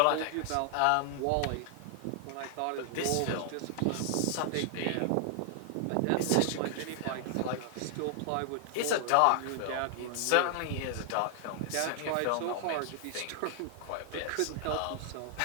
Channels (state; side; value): different; both; correlation 0.00